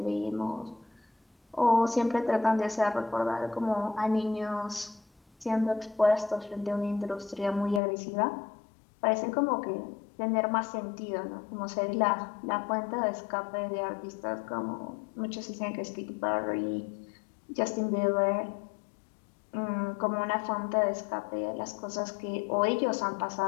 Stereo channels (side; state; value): right; drops out; at 7.8 s